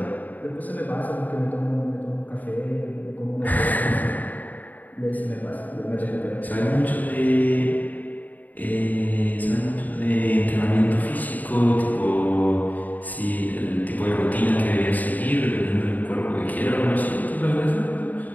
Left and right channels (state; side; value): late; right; 0.080 ms